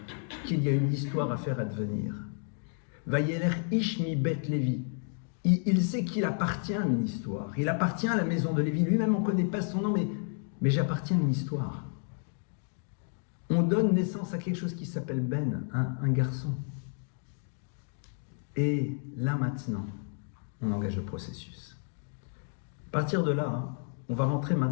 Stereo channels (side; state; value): right; silent; 57 dB below the other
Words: qu'il y a une histoire à faire advenir. Vayeler Ishmi Bet Lévi. Il sait qu'il appartient à une histoire. Il appartient à la maison de Lévi. Lui-même, on ne connaît pas son nom, mais j'appartiens à une histoire. On donne naissance à quelque chose qui s'appelle Ben, un garçon. Et là maintenant, on engage le processus. À partir de là, on va rentrer